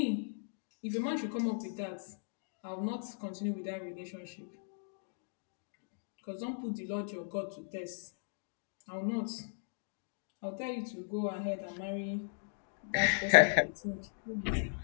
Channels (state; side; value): silent; right; digital silence